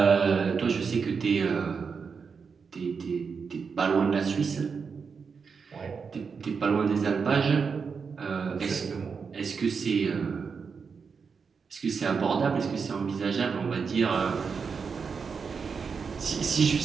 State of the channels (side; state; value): left; quieter; 5.6 dB